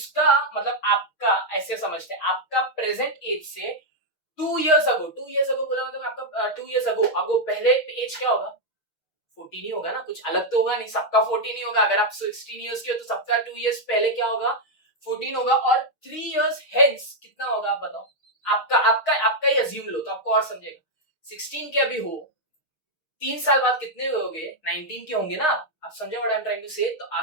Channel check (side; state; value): right; late; 6.3 ms